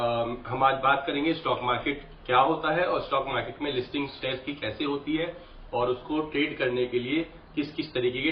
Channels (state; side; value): identical; both; correlation 1.00